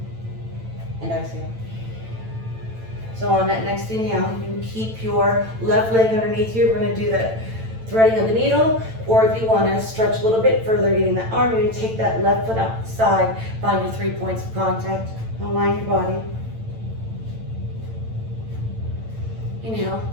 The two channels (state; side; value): late; left; 9.0 ms